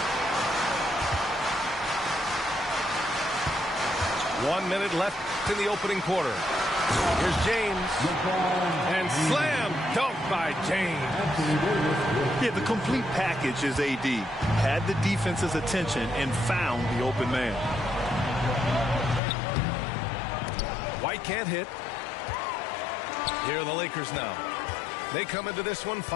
One minute left in the opening quarter. Here's James. And slam dunk by James. Yeah, the complete package is AD. Had the defense's attention and found the open man. White can't hit. Here are the Lakers now. They come into this one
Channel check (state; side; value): drops out; right; at 19.2 s